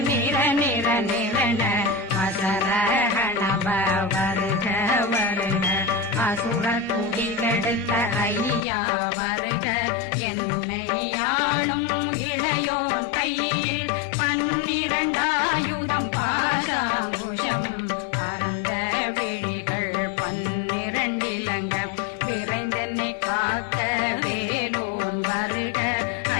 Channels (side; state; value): right; drops out; at 8.6 s